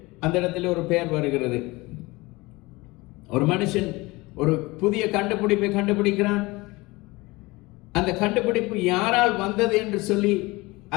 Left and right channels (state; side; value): quieter; right; 22.5 dB